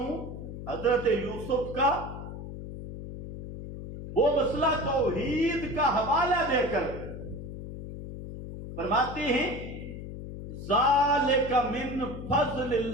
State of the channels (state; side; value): noise; left; hum, 9 dB below the sound